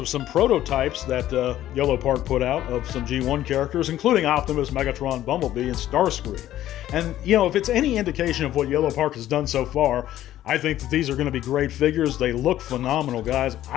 some prototypes that Yellow Park put out of some G1 characters, including Optimus, Megatron, Bumblebee, and Starscream. And, if it's any indication of what Yellow Park has done so far, I think that these are going to be great figures. They look phenomenal, guys.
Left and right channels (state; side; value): quieter; right; 13.1 dB